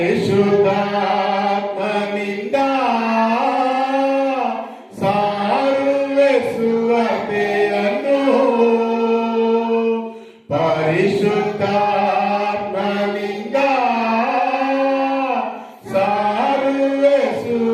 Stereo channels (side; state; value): both; identical; correlation 1.00